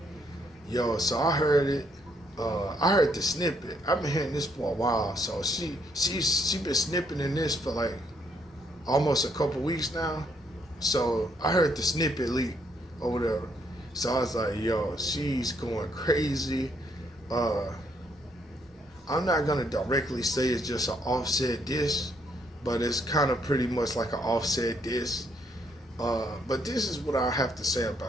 Yo, so I heard it. I heard the snippet. I've been hearing this for a while. So she been snipping in this for like almost a couple weeks now. So I heard the snippet leak or whatever. So I was like, yo, she's going crazy. I'm not gonna directly say it's just an Offset diss, but it's kind of pretty much like an Offset diss. But this is what I have to say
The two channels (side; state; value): both; normal; correlation 0.71